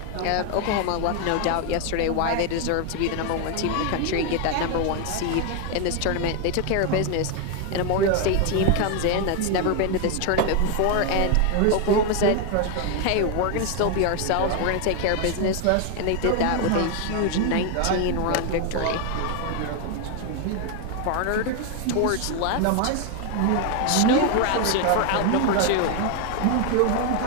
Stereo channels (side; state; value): both; different; correlation 0.01